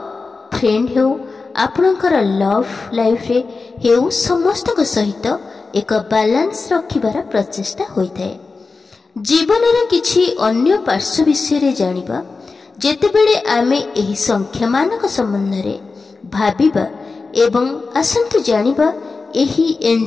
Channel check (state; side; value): quieter; right; 4.1 dB